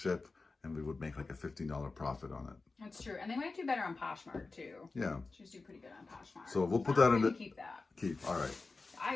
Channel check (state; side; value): quieter; right; 3.8 dB